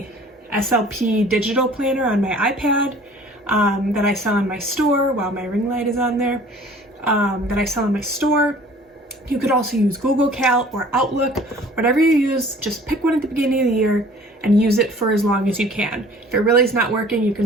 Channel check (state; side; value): normal; both; correlation 0.50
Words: SLP digital planner on my iPad that I sell in my store. While my ring light is on there, that I sell in my store. You could also use Google Cal or Outlook, whatever you use. Just pick one at the beginning of the year and use it for as long as you can. If it really is not working, you